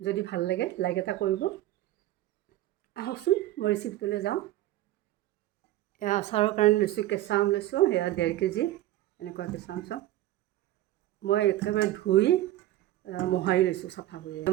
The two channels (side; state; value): left; quieter; 14.8 dB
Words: ভাল লাগে লাইক এটা কৰিব। আহকচোন মই ৰেচিপিটোলৈ যাওঁ। এয়া আচাৰৰ কাৰণে লৈছোঁ, কেঁচা আম লৈছোঁ, সেয়া 1.5 কেজি এনেকুৱা কেঁচা আম চব। মই একেবাৰে ধুই মোহাৰি লৈছোঁ চাফা কৰি।